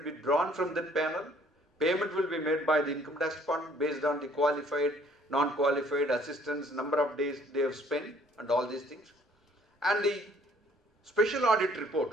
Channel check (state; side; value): normal; both; correlation 0.60